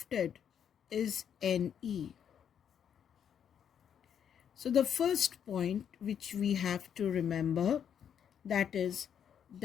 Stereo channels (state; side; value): quieter; right; 8.5 dB